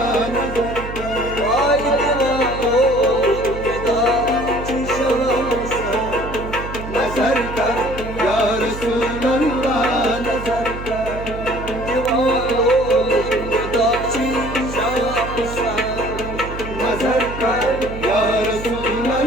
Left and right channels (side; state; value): right; noise; hum, 10 dB below the sound